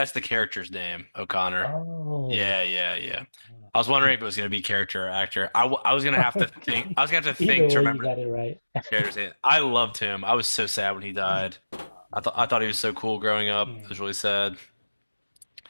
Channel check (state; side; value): inverted; both; correlation -1.00